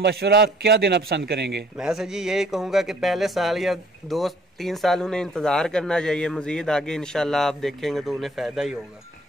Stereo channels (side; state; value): both; normal; correlation 0.58